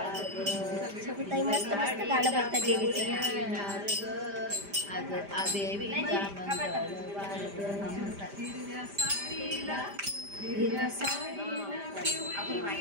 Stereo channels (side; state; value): left; late; 5.0 ms